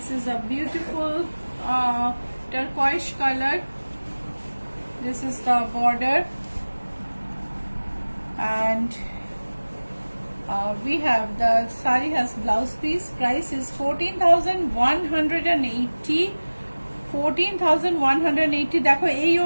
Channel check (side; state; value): both; inverted; correlation -1.00